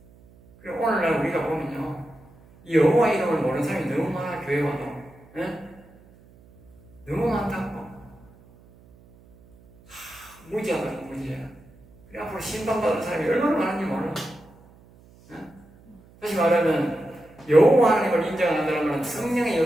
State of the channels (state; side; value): noise; right; hum, 26 dB below the sound